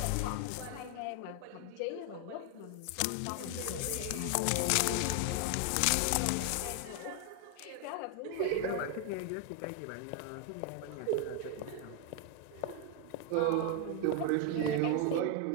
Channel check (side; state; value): both; different; correlation 0.01